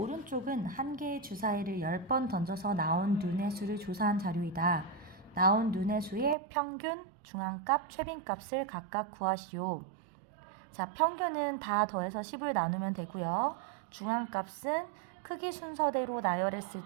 한 개의 주사위를 10번 던져서 나온 눈의 수를 조사한 자료이다. 나온 눈의 수의 평균, 중앙값, 최빈값을 각각 구하시오. 자, 평균은 다 더해서 10을 나누면 되고요. 중앙값은 크기 순서대로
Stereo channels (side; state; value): left; drops out; at 6.4 s